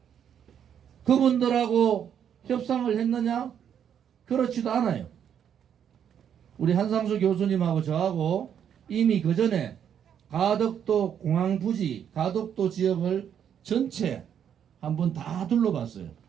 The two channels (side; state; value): left; quieter; 8.8 dB